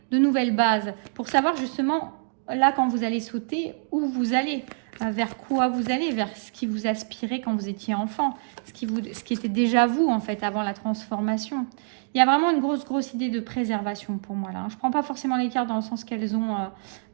de nouvelles bases, pour savoir justement, là quand vous allez sauter, où vous allez. Vers quoi vous allez, vers ce qui vous aspirait quand vous étiez enfant, ce qui était déjà vous en fait avant la transformation. Il y a vraiment une grosse idée de préservation pour moi là. Je ne prends pas forcément les cartes dans le sens qu'elles ont,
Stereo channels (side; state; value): left; silent; digital silence